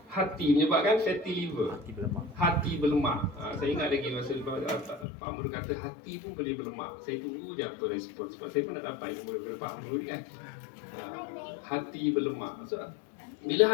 hati, menyebabkan fatty liver. Hati berlemak. Saya ingat lagi masa Pak Amrul kata hati pun boleh berlemak. Saya tunggu je apa respon, sebab saya pun nak dapat ilmu daripada Pak Amrul kan. Hati berlemak. So, bila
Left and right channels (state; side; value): drops out; right; at 5.1 s